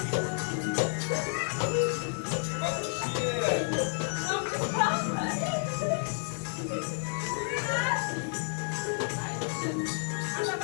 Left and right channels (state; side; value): silent; right; digital silence